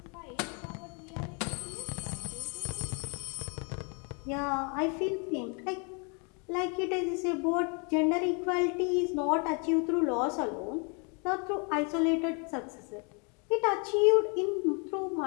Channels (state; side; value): quieter; right; 35.3 dB